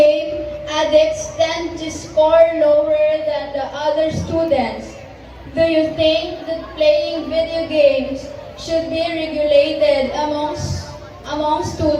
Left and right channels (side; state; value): both; identical; correlation 1.00